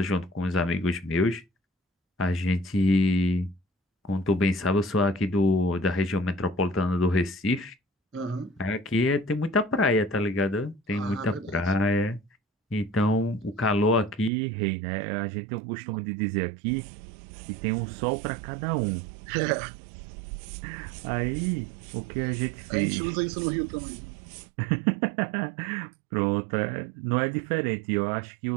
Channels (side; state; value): left; drops out; at 14.3 s